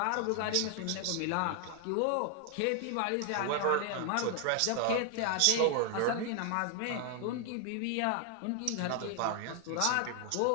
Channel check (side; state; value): both; different; correlation 0.00